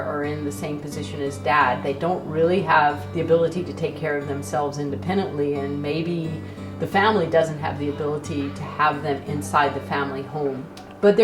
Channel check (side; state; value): both; identical; correlation 1.00